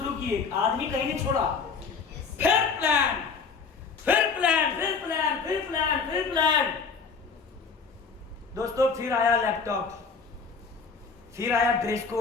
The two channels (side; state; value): right; quieter; 5.3 dB